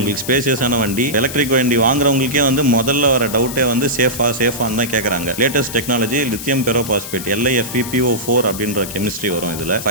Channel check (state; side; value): noise; left; hiss, 10 dB below the sound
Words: ஸ்பேசியஸான வண்டி. எலக்ட்ரிக் வண்டி வாங்குறவங்களுக்கே வந்து முதல்ல வர டவுட்டே வந்து சேஃபான்னு தான் கேட்கறாங்க. Latest technology lithium ferrophosphate, LFP PO4 அப்படின்ற கெமிஸ்ட்ரி வரும் இதுல.